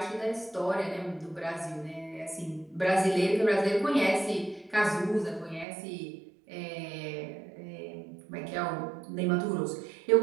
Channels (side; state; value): left; drops out; at 5.7 s